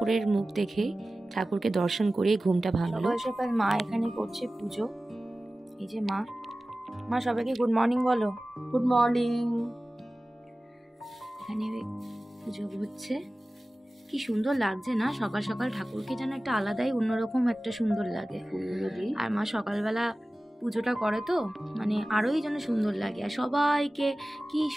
মুখ দেখে, ঠাকুরকে দর্শন করে ঘুমটা ভাঙলো। সকাল সকাল মা এখানে করছে পুজো। এই যে মা সবাইকে গুড মর্নিং বলো। Good morning. এখানে পুজো হচ্ছে, কি সুন্দর লাগছে না সকাল সকাল, ঠাকুরকে যেন একটা আলাদাই অন্যরকম একটা সুন্দর লাগে। আর মা সকালবেলা পুজোটা করে তো মানে আরোই যেন সুন্দর লাগে। আর সবাইকে কি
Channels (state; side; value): normal; both; correlation 0.96